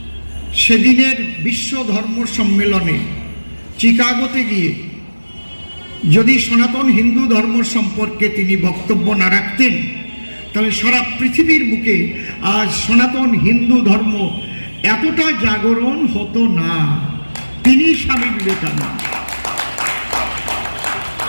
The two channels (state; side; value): inverted; both; correlation -1.00